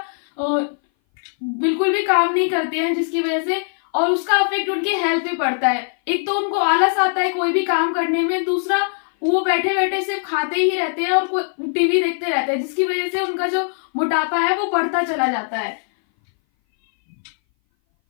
बिल्कुल भी काम नहीं करते हैं, जिसकी वजह से और उसका इफेक्ट उनके हेल्थ पे पड़ता है। एक तो उनको आलस आता है कोई भी काम करने में, दूसरा वो बैठे बैठे सिर्फ खाते ही रहते हैं और टीवी देखते रहते हैं, जिसकी वजह से उनका जो मोटापा है वो बढ़ता चला जाता है।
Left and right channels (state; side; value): silent; right; 59 dB below the other